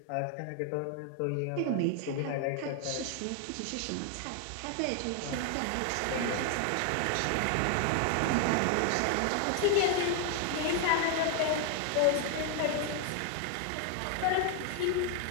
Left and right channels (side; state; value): both; different; correlation 0.00